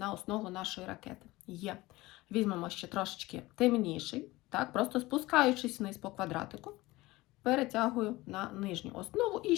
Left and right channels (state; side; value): quieter; right; 19.7 dB